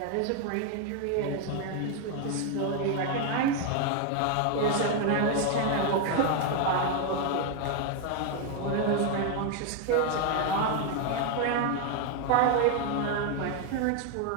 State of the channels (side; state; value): both; different; correlation 0.01